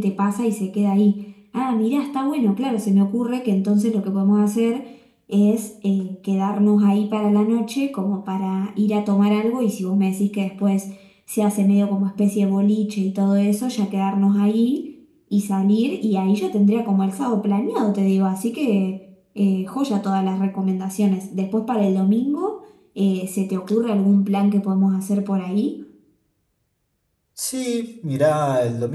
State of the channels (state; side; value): identical; both; correlation 1.00